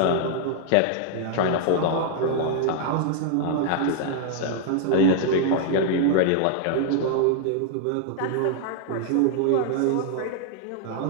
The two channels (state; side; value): different; both; correlation -0.01